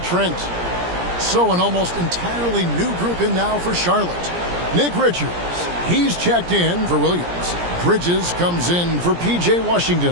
So an almost entirely new group in now for Charlotte. Nick Richards, he's checked in for Williams. Bridges comes in for P.J.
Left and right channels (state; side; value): late; left; 17 ms